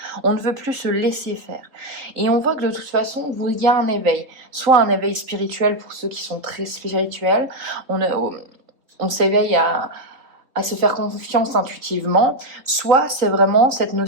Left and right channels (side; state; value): left; late; 3.9 ms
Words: On ne veut plus se laisser faire. Et on voit que de toute façon, il y a un éveil. Soit un éveil spirituel pour ceux qui sont très spirituels. On s'éveille à se faire confiance intuitivement. Soit c'est vraiment cette